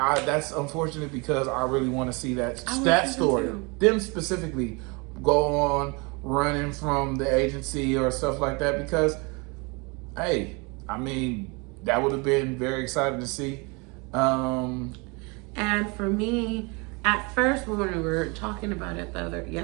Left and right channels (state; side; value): quieter; left; 29.2 dB